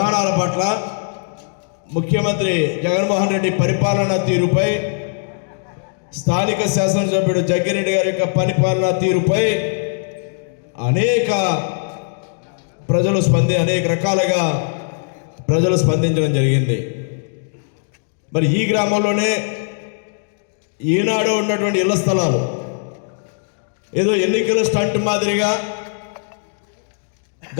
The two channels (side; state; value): right; silent; digital silence